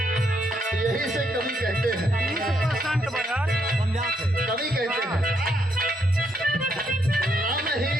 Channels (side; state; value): both; normal; correlation 0.75